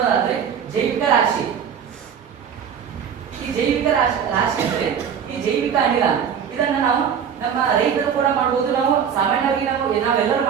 ಜೈವಿಕ ರಾಶಿ. ಈ ಜೈವಿಕ ರಾಶಿ ಅಂದ್ರೆ ಈ ಜೈವಿಕ ಅನಿಲ. ಇದನ್ನ ನಾವು ನಮ್ಮ ರೈತರು ಕೂಡ ಮಾಡಬಹುದು, ನಾವು ಸಾಮಾನ್ಯವಾಗಿ ನಾವೆಲ್ಲರೂ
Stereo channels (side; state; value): left; quieter; 7.8 dB